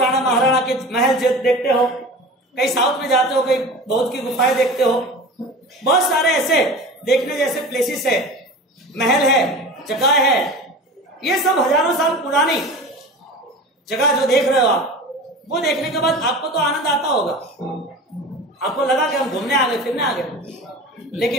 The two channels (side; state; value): both; normal; correlation 0.34